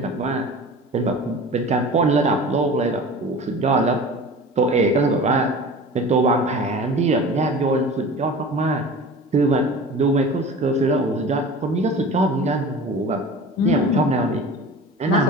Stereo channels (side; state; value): both; normal; correlation 0.37